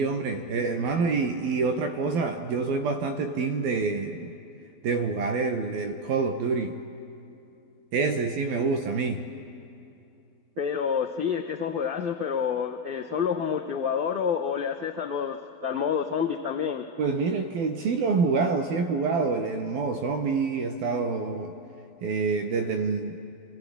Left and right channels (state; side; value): late; left; 12 ms